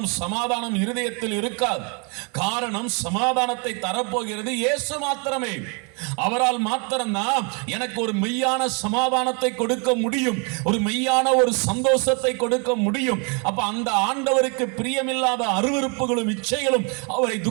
சமாதானம் இருதயத்தில் இருக்காது. காரணம், சமாதானத்தை தரப்போகிறது இயேசு மாத்திரமே. அவரால் மாத்திரம்தான் எனக்கு ஒரு மெய்யான சமாதானத்தை கொடுக்க முடியும், ஒரு மெய்யான ஒரு சந்தோஷத்தை கொடுக்க முடியும். அப்ப அந்த ஆண்டவருக்கு பிரியமில்லாத அருவருப்புகளும் இச்சைகளும், அவரை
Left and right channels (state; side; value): quieter; left; 35.0 dB